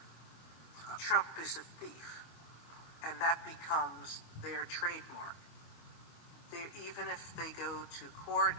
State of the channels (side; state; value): right; late; 25 ms